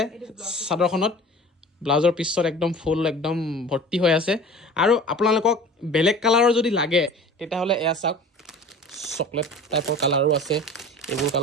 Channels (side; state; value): both; normal; correlation 0.41